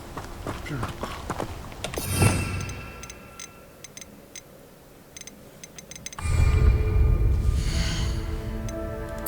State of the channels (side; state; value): both; identical; correlation 1.00